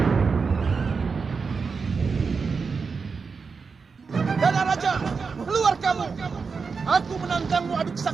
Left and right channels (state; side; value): quieter; left; 5.1 dB